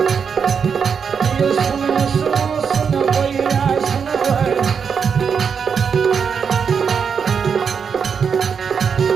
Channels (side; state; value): left; quieter; 6.5 dB